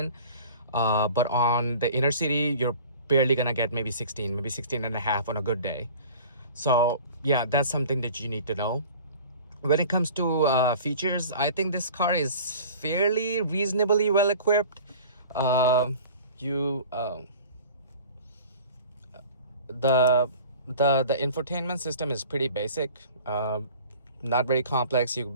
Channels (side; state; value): both; inverted; correlation -0.44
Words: but on the inner city you're barely gonna get maybe 16, maybe 16 and a half on a good day. So yeah, that's something that you need to know. When it comes to features, I think this car is fairly reasonably well equipped. The infotainment system is pretty basic, not very complex. You